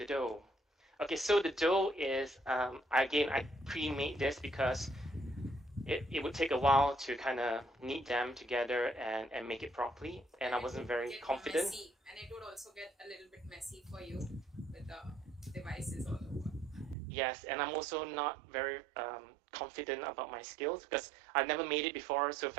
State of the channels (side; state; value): left; drops out; at 16.9 s